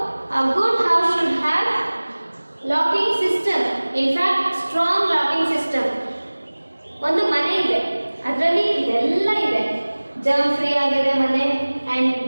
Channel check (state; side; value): inverted; both; correlation -1.00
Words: a good house should have locking system. In fact, strong locking system. ಒಂದು ಮನೆ ಇದೆ, ಅದರಲ್ಲಿ ಇದೆಲ್ಲ ಇದೆ. ಜರ್ಮ್ ಫ್ರೀ ಆಗಿದೆ ಮನೆ.